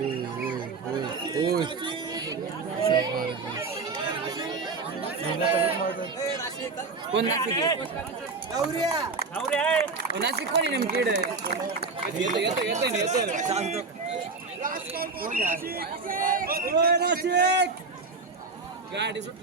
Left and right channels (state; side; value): quieter; left; 4.2 dB